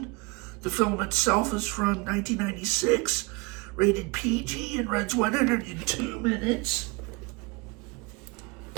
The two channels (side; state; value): left; quieter; 27.7 dB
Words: The film itself is from 1996, rated PG, and runs 102 minutes.